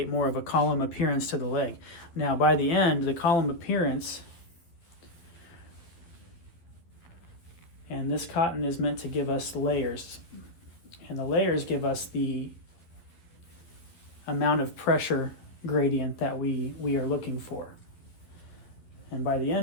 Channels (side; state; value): right; late; 11 ms